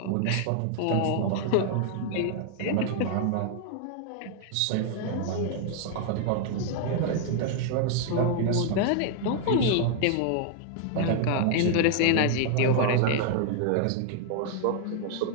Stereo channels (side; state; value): both; different; correlation 0.00